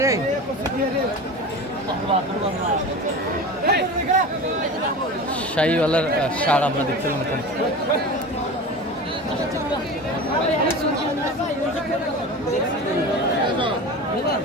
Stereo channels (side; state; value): both; normal; correlation 0.31